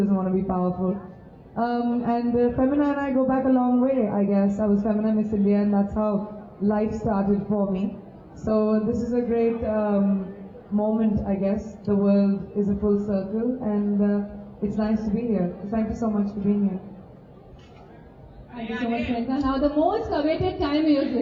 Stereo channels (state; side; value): identical; both; correlation 1.00